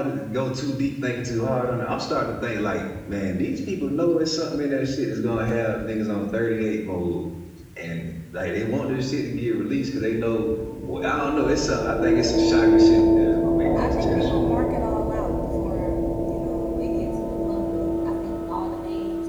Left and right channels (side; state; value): both; identical; correlation 1.00